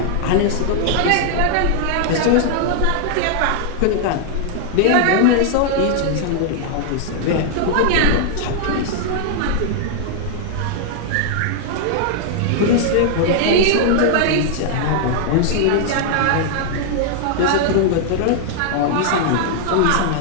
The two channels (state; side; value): different; both; correlation -0.01